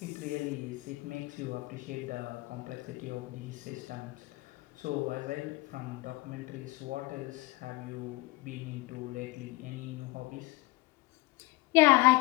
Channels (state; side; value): quieter; right; 21.4 dB